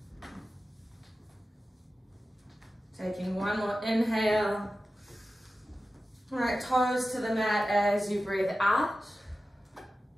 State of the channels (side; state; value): both; normal; correlation 0.94